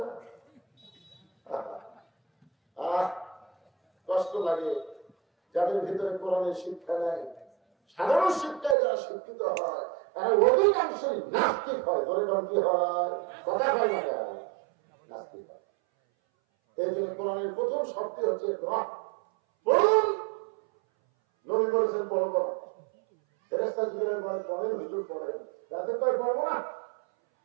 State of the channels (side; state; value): left; drops out; at 8.8 s